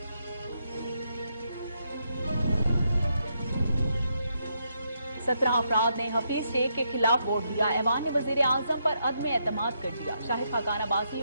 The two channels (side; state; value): both; inverted; correlation -0.79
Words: 17 अफराद ने हफीज शेख के खिलाफ वोट दिया। ऐवान ने वज़ीर-ए-आज़म पर अदम एतमाद कर दिया। शाहिद खाकान अब्बासी